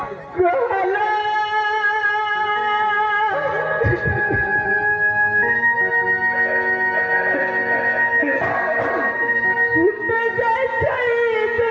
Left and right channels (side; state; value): both; identical; correlation 1.00